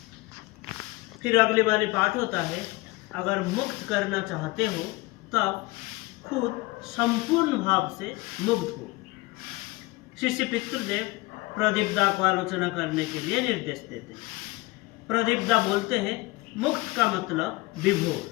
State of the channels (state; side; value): quieter; right; 22.2 dB